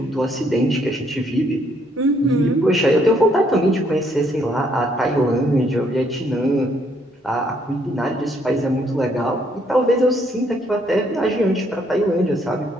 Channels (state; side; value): normal; both; correlation 0.69